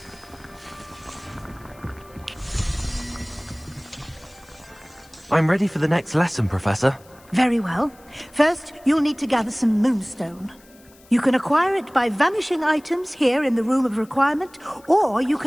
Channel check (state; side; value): noise; left; hiss, 27 dB below the sound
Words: I'm ready for the next lesson, Professor. Very well. First, you'll need to gather some moonstone. You can acquire it by vanishing items here in the Room of Requirement, or you